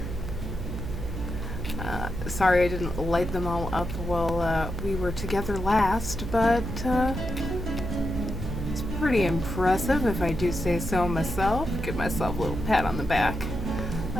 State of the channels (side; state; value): right; noise; hum, 6 dB below the sound